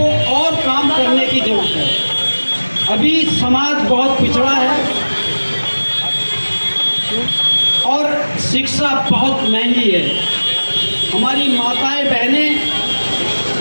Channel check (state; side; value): inverted; both; correlation -1.00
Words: और काम करने की जरूरत है। अभी समाज बहुत पिछड़ा है और शिक्षा बहुत महंगी है। हमारी माताएं, बहनें,